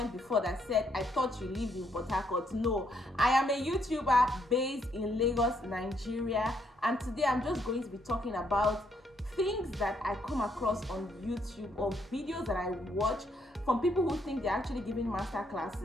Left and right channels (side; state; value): both; normal; correlation 0.73